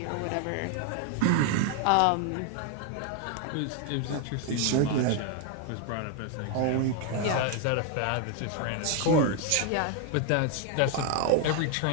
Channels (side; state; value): both; different; correlation 0.01